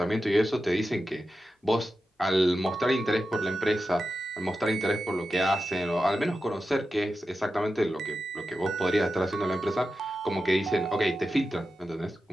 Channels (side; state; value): both; normal; correlation 0.91